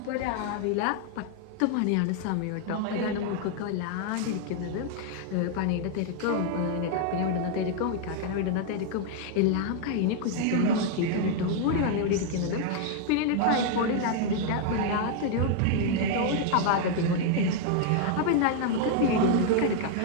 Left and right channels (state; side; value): different; both; correlation 0.00